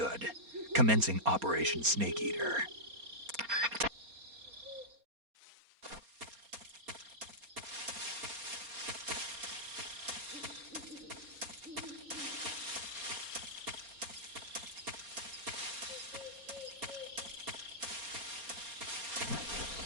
Commencing Operation Snake Eater.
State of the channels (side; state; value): left; late; 4.3 ms